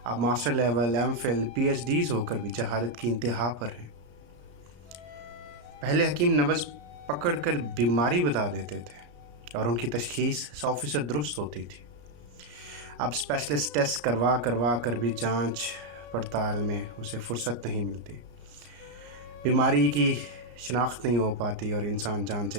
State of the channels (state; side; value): late; left; 34 ms